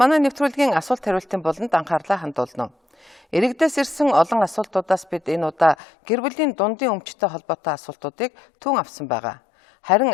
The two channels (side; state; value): right; drops out; at 5.8 s